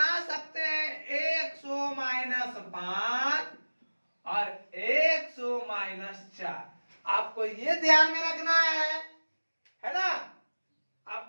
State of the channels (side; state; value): both; inverted; correlation -1.00